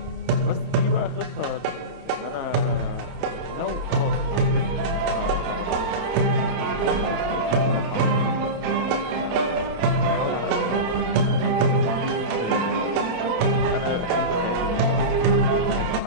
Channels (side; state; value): left; late; 28 ms